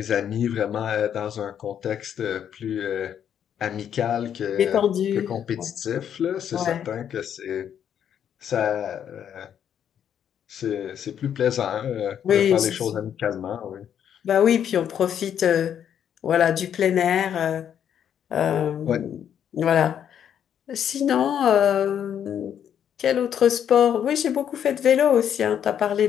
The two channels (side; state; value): right; quieter; 9.1 dB